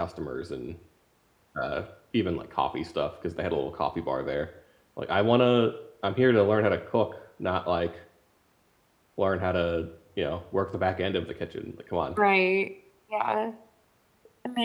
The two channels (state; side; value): identical; both; correlation 1.00